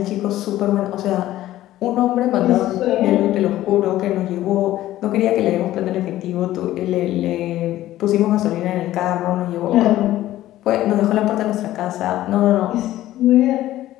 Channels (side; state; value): right; quieter; 14.5 dB